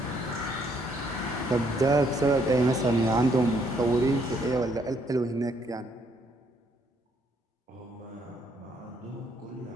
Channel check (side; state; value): both; normal; correlation 0.70